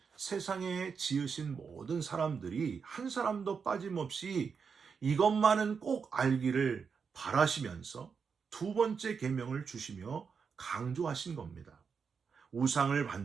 세상에 지으신 모든 사람들이 한 사람도 빠짐없이 이것만은 꼭 알기를 바라시면서 두 번째 계명을 주시며 강조하신 겁니다. 우상을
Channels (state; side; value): quieter; left; 5.9 dB